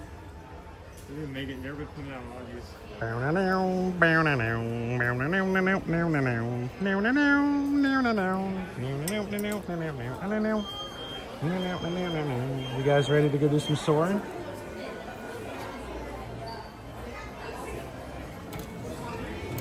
We didn't make it. Never been putting out on these. You guys ready to go do some soaring?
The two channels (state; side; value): identical; both; correlation 1.00